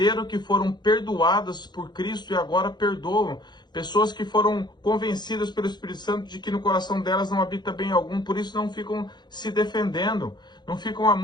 que foram perdoadas por Cristo e agora perdoam. Pessoas que foram convencidas pelo Espírito Santo de que no coração delas não habita bem algum, por isso não ficam se defendendo, não ficam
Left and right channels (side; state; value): right; late; 0.21 ms